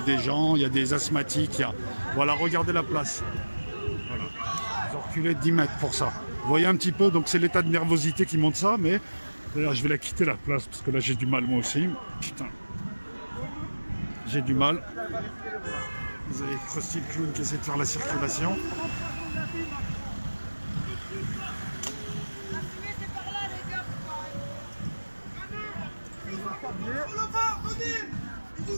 des gens, il y a des asthmatiques. Voilà, regardez la place. Voilà. Ils ont reculé de 10 mètres pour ça. Vous voyez un petit peu, donc c'est l'état de nervosité qui montre ça, mais d'ailleurs, je vais la quitter la place parce que là, j'ai du mal moi aussi. Putain. J'ai du mal. Vous avez Krusty le clown qui essaie de faire la circulation.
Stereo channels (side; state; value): both; inverted; correlation -1.00